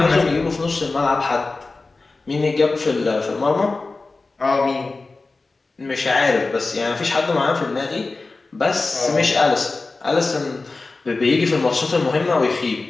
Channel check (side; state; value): right; quieter; 3.6 dB